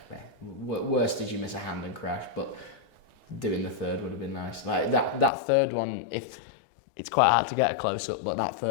worst is you miss a hand and crash, but doing the third would have been nice. Like that third one, it's quite hard to get a close up, but that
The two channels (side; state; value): right; drops out; at 5.3 s